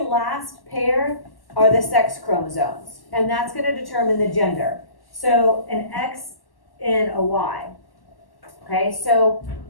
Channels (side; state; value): right; late; 1.1 ms